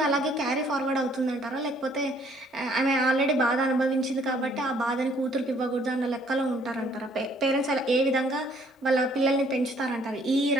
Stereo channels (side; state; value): both; normal; correlation 0.62